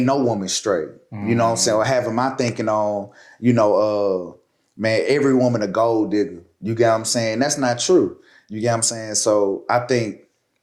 no woman straight. You know what I'm saying? Or having my thinking on, you know, man, every woman a gold digger. You get what I'm saying? That's not true. You get what I'm saying? So I think,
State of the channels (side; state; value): both; identical; correlation 1.00